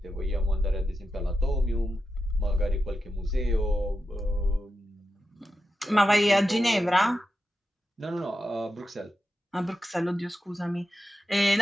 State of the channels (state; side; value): normal; both; correlation 0.89